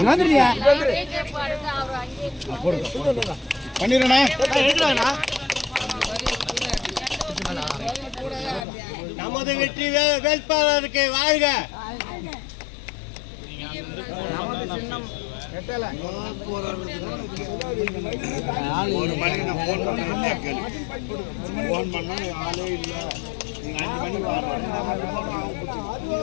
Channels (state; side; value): drops out; right; at 8.7 s